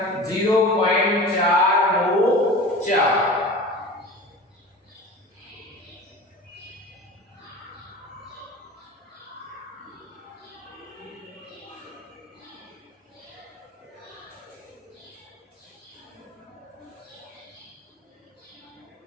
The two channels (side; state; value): both; normal; correlation 0.36